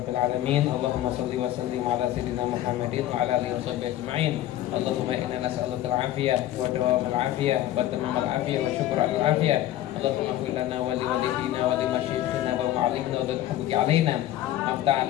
alamin. Allahumma shalli wa sallim ala sayyidina Muhammadin wa ala alihi washabbihi ajma'in. Allahumma inna nas'aluka al-'afiyah wa dawamal 'afiyah wa tamamal 'afiyah wa syukra al-'afiyah. Allahumma ighfir lana wa li walidina wa li masyayikhina wa mu'allimina wa dhul haqqi 'alaina. Aftah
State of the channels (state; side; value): quieter; right; 13.5 dB